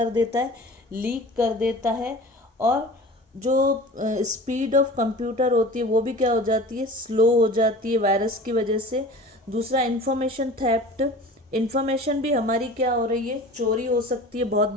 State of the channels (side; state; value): both; normal; correlation 0.39